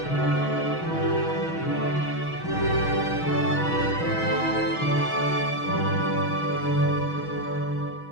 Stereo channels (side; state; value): right; late; 6.3 ms